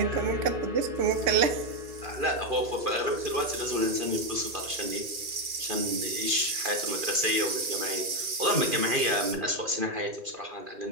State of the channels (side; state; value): left; late; 2.4 ms